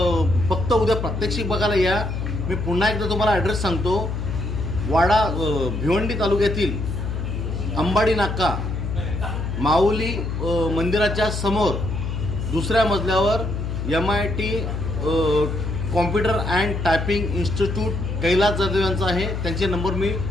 फक्त उद्या प्रात्यक्षिक बघायला या. मी पुन्हा एकदा तुम्हाला ॲड्रेस सांगतो. वाडा, भिवंडी तालुक्यातील अंबाडी नाका, माऊली मंदिराच्या समोर 2ऱ्या मजल्यावर MIT computer and typing institute Kailas Jadhav यांचा आहे. त्यांचे नंबर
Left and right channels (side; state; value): left; noise; hum, 3 dB below the sound